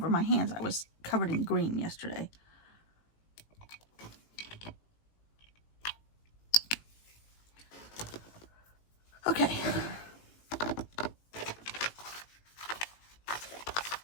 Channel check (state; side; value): late; right; 18 ms